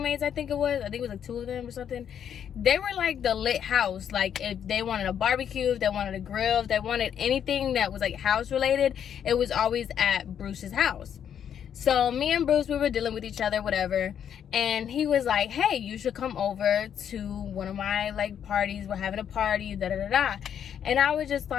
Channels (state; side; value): quieter; right; 8.8 dB